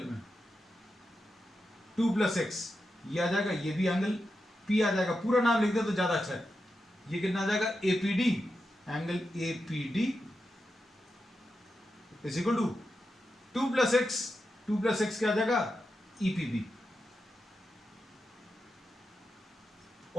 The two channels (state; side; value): normal; both; correlation 0.88